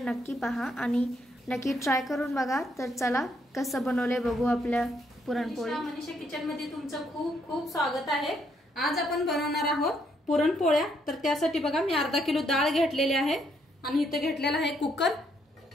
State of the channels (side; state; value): both; normal; correlation 0.73